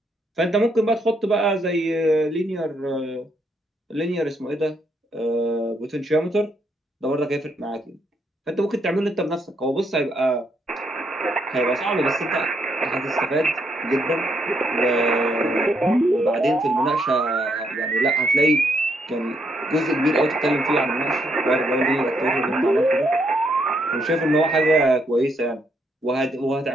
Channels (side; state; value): both; normal; correlation 0.75